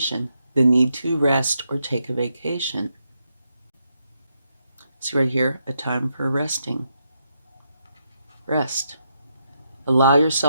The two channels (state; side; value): inverted; both; correlation -0.81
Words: The need to rest or take a vacation. See right here, a time for resting. Rest. Allow